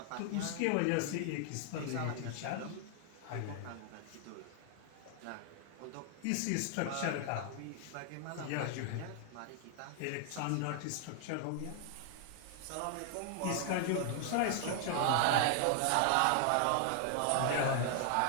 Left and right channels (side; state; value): both; different; correlation 0.00